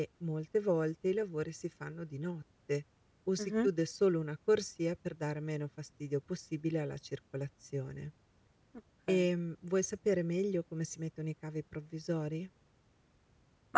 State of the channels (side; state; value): both; identical; correlation 1.00